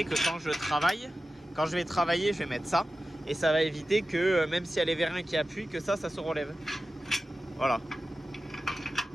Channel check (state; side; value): normal; both; correlation 0.94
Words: que quand je vais travailler, je vais mettre ça. Et ça va éviter que même s'il y a les vérins qui appuient, que ça se relève. Voilà.